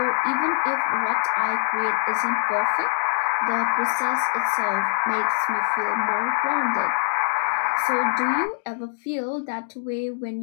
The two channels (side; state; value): right; silent; digital silence